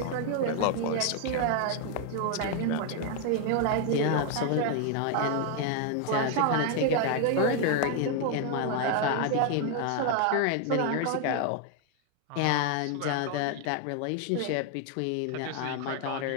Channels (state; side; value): different; both; correlation 0.00